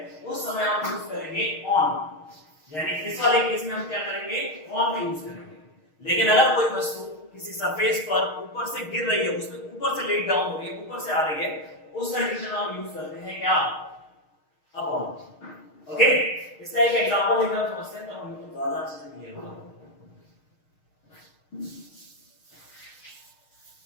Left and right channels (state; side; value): late; right; 6.5 ms